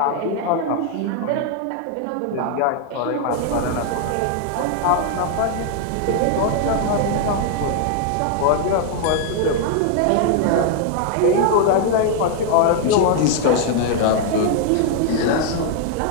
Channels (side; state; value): both; different; correlation 0.00